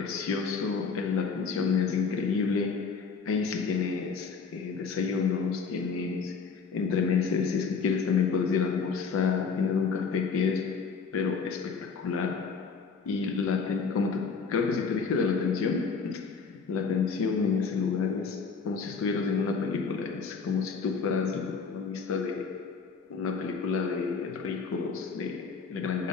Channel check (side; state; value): right; quieter; 5.3 dB